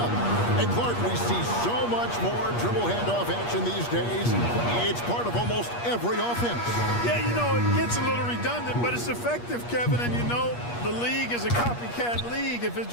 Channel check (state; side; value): late; right; 8.4 ms